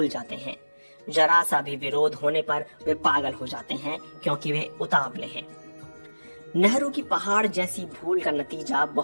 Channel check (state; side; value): inverted; both; correlation -1.00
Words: जाते हैं। जरा सा भी विरोध होने पर वे पागल हो जाते हैं, क्योंकि वे उतावले हैं। नेहरू की पहाड़ जैसी भूल का नतीजा